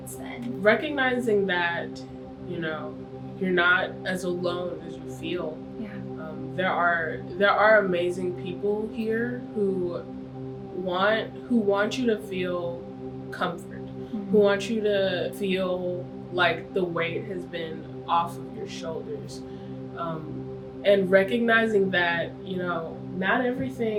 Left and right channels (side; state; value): both; identical; correlation 1.00